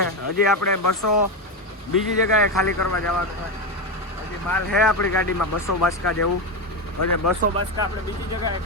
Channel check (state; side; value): normal; both; correlation 0.13